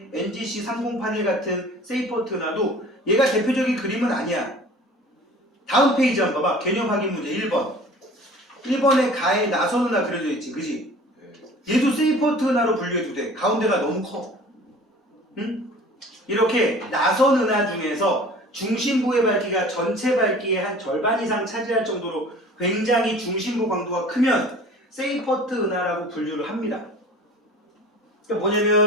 NGC 3081 같은 세이퍼트 은하도 얘가 대표적인 그림은 아니야. 다음 페이지 한번 봐봐. 개념 확인 문제 1번. 1번에 가에 나선 은하 그려져 있지, 그지? 얘도 세이퍼트 은하로 분류해도 돼. 가운데가 너무 커. 응? 이렇게 나선 은하 중에서 중심부의 밝기가 전체 밝기의 한 절반 이상 차지할 정도로 굉장히 중심부 광도가 크면 세이퍼트 은하라고 분류를 합니다. 그러니까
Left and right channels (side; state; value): both; normal; correlation 0.45